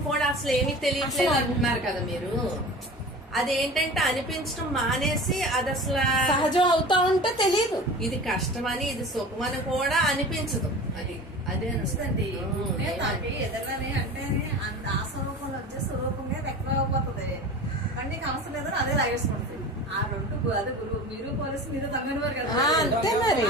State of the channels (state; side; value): normal; both; correlation 0.36